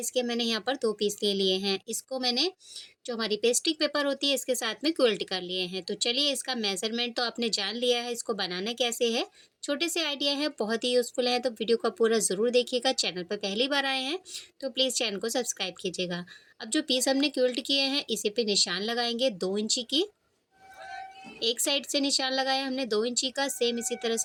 के मैंने यहाँ पर 2 पीस ले लिए हैं। इसको मैंने जो हमारी पेस्टिक पेपर होती है इसके साथ में क्विल्ट कर लिए हैं। तो चलिए इसका मेज़रमेंट तो आपने जान लिया है, इसको बनाना कैसे है। छोटे से आइडिया है, बहुत ही यूज़फुल है, तो वीडियो को पूरा ज़रूर देखिएगा। चैनल पर पहली बार आए हैं तो प्लीज़ चैनल को सब्सक्राइब कीजिएगा। अब जो पीस हमने क्विल्ट किए हैं इसी पे निशान लगाएंगे 2 इंची की। एक साइड से निशान लगाया हमने 2 इंची का, सेम इसी तरह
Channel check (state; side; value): identical; both; correlation 1.00